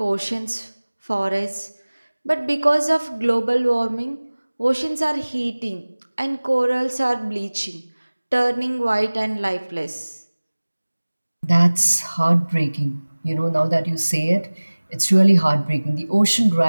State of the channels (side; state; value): both; inverted; correlation -1.00